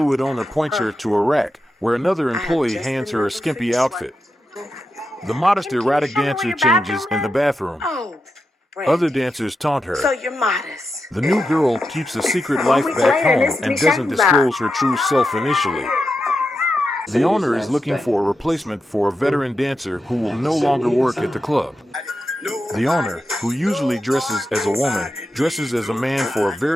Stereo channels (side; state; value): both; normal; correlation 0.88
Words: owner points her to a rack, where another employee hands her a skimpy outfit. The modest erotic dancer changes in the bathroom. Other dancers taunt her. So you're modest. The new girl keeps a secret life back home and doesn't disclose her true self initially. The owner is looking for a replacement for a veteran dancer who will no longer work at the club. The owner, who usually dresses as a woman, dresses as a man for a